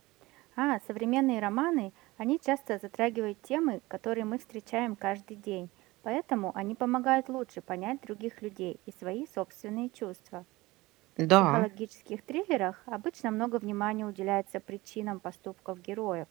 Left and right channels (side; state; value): left; quieter; 20.5 dB